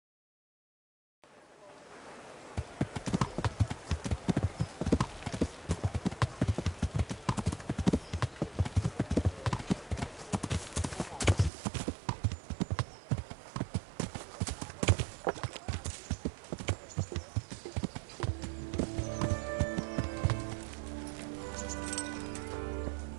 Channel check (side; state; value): left; drops out; at 11.5 s